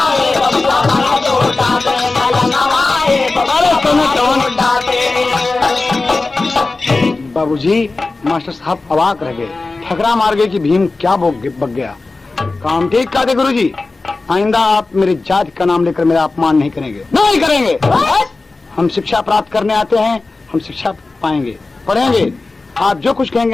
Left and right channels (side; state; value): right; quieter; 3.5 dB